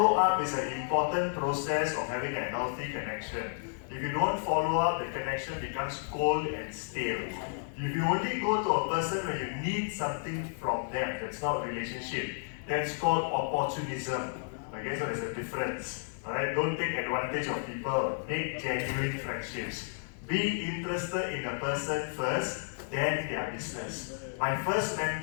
up is an important process of having a healthy connection. If you don't follow up, the connection becomes cold and stale. If you only go to a person when you need something from them, that's not a relationship. That's called opportunism. Okay, so there's a difference. Alright, don't take advantage of people. Make genuine friendships. Be interested in a person first, then their business. My first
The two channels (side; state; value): right; silent; digital silence